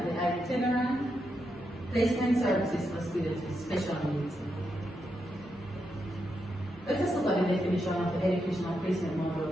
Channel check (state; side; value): normal; both; correlation 0.84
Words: the itinerant placement services for students with special needs. Let us look at the definition of the educational placement